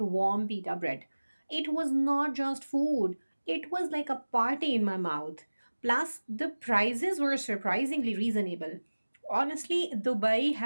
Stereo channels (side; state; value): both; inverted; correlation -1.00